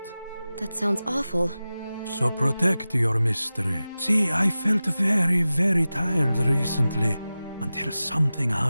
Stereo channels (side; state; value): both; inverted; correlation -0.95